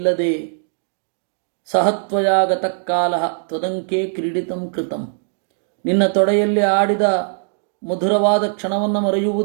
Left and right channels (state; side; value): silent; left; digital silence